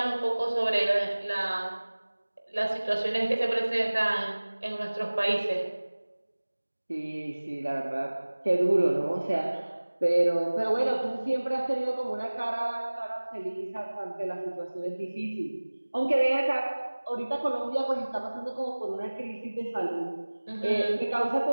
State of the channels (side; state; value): both; inverted; correlation -1.00